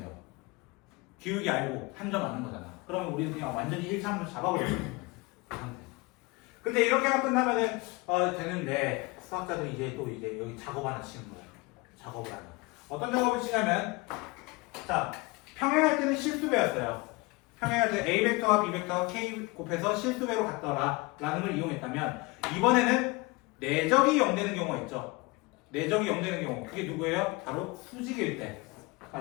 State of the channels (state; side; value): quieter; right; 24.8 dB